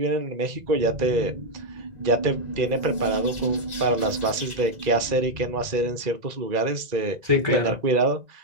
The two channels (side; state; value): left; late; 2.0 ms